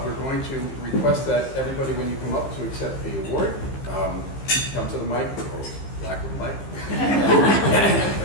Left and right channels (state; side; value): late; right; 15 ms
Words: we're going to request that everybody, when you come up to accept the award, come to the mic, or lack of a mic,